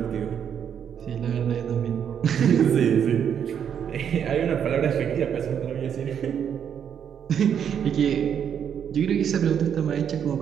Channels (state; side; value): quieter; left; 8.3 dB